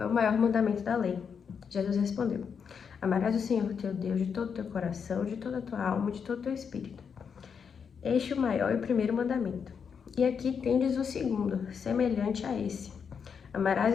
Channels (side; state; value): right; quieter; 6.6 dB